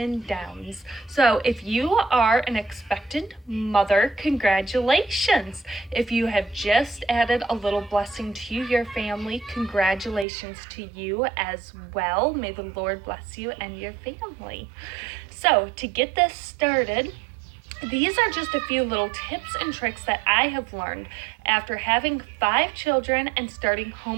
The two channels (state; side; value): drops out; left; at 10.2 s